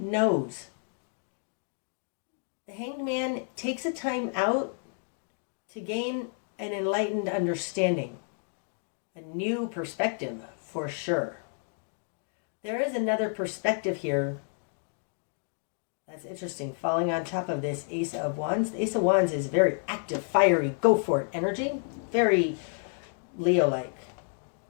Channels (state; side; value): silent; right; 58 dB below the other